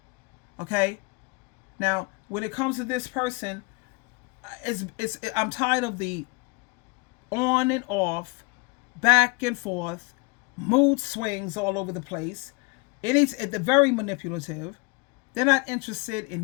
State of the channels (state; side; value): quieter; right; 28.4 dB